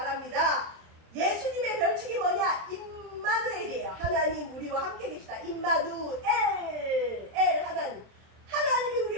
예수님의 별칭이 뭐냐? 임마누엘이에요. 하나님 우리와 함께 계시다. 임마누엘, 엘 하나님. 하나님이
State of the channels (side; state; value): left; late; 27 ms